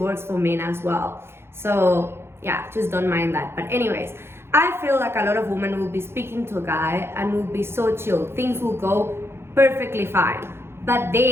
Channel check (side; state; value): left; late; 0.12 ms